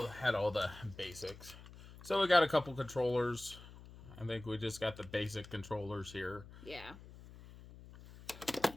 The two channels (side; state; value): left; noise; hum, 17 dB below the sound